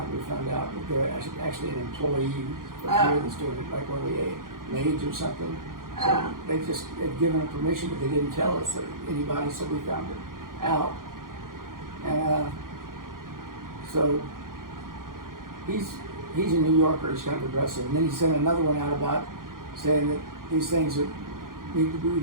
We found out that they're actually an employee that's doing it, like one of the maids or something. So they'd given them permission, but they didn't tell us anybody, so we found it out. And so he's a New Yorker. He's kind of aggressive. And then he sent another one out about saying that these things that we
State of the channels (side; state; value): left; late; 0.91 ms